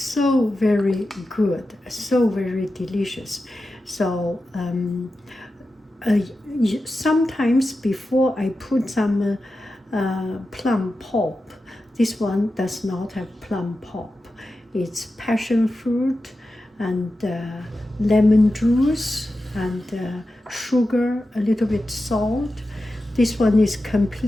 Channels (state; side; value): normal; both; correlation 0.92